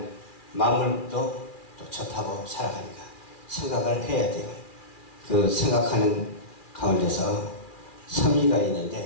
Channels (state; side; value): late; right; 2.4 ms